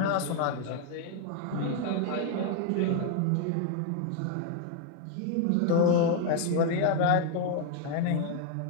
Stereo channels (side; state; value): both; different; correlation 0.01